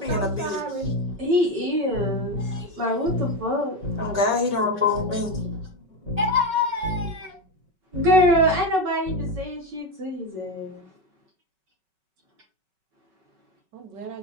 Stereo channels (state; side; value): late; left; 5.3 ms